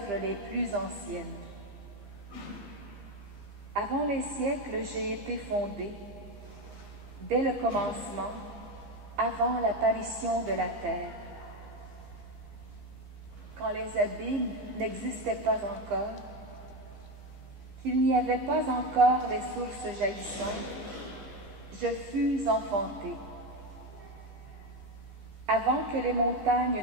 les plus anciennes. Avant les siècles, j'ai été fondée, dès le commencement, avant l'apparition de la terre. Quand les abîmes n'existaient pas encore, qu'il n'y avait pas encore les sources jaillissantes, je fus enfantée. Avant que les montagnes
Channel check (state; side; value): late; left; 15 ms